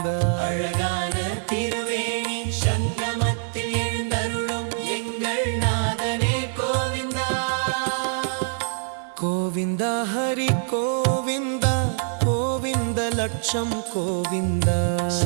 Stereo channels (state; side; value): silent; left; 57 dB below the other